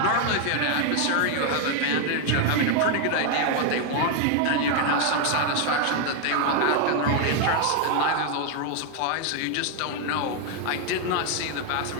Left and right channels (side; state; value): both; different; correlation 0.01